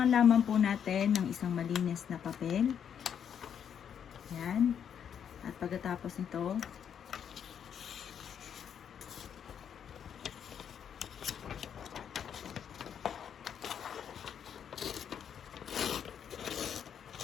lamang po natin ng isang malinis na papel. Yan. At pagkatapos nito,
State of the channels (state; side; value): quieter; right; 8.3 dB